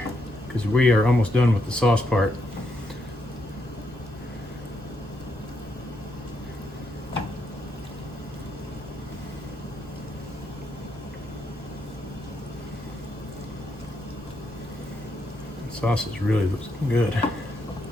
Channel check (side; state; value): both; normal; correlation 0.78